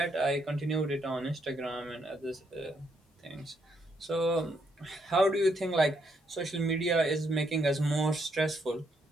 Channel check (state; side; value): normal; both; correlation 0.75